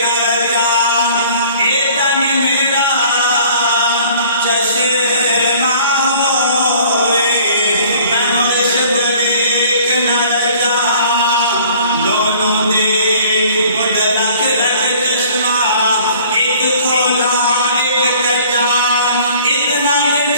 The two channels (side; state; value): both; inverted; correlation -0.52